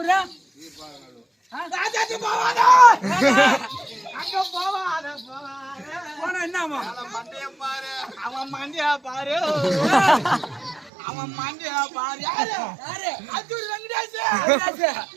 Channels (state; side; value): drops out; left; at 10.9 s